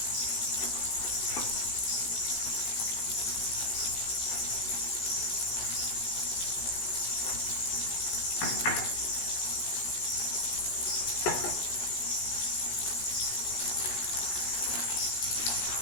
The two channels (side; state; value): right; late; 17 ms